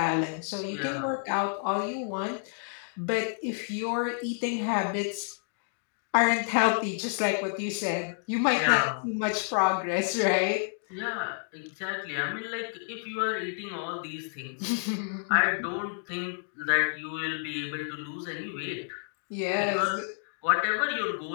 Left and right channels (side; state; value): right; silent; digital silence